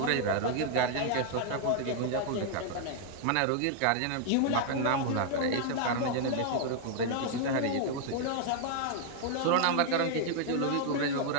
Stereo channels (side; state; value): both; different; correlation 0.00